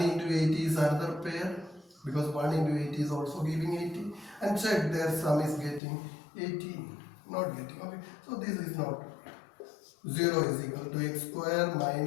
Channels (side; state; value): right; drops out; at 5.8 s